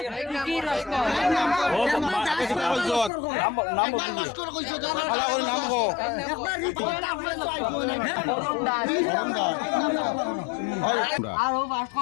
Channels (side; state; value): right; drops out; at 3.1 s